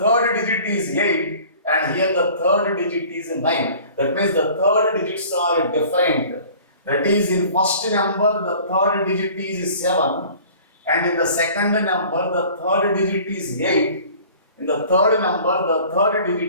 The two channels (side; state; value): both; inverted; correlation -0.48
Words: digit is 8. And here the third digit is 9. That means the third digits are different. That is, in first number the third digit is 7 and in the second number the third digit is 8. In the third number the third